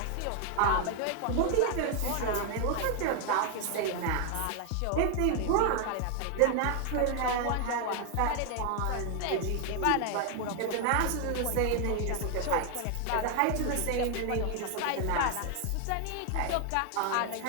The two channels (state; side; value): different; both; correlation 0.00